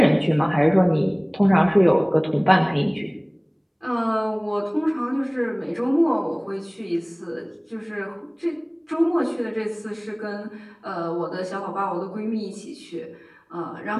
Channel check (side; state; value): both; identical; correlation 1.00